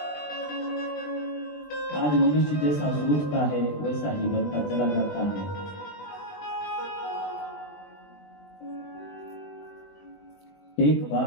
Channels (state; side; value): late; right; 20 ms